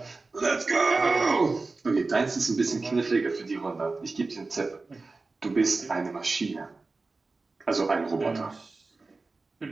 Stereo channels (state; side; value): quieter; left; 3.7 dB